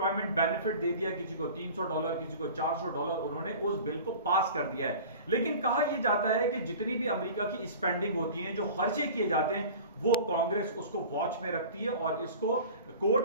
बेनिफिट दे दिया, किसी को $300, किसी को $400, उन्होंने उस बिल को पास कर दिया है। लेकिन कहा यह जाता है कि जितनी भी अमेरिका की स्पेंडिंग होती है, जो खर्चे किए जाते हैं, वो कांग्रेस उसको वॉच में रखती है और इसको कोर्ट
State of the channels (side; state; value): both; inverted; correlation -0.40